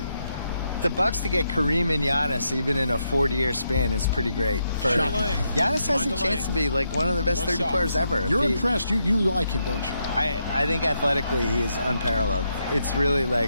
The Bucks to get Kareem and Giannis even in a 40-year span is pretty great. Giannis has a chance to be like one of the best 30 players ever. You're impressed. You like him, don't you? I think athletically he is unparalleled. It's really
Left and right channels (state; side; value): inverted; both; correlation -0.81